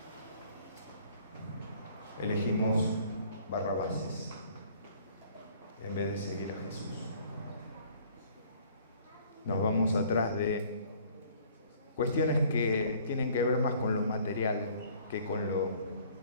elegimos Barrabases en vez de seguir a Jesús? Nos vamos atrás de cuestiones que tienen que ver más con lo material que con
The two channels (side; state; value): both; inverted; correlation -0.56